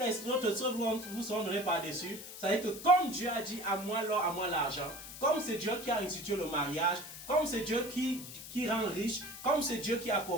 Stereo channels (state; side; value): noise; left; hiss, 12 dB below the sound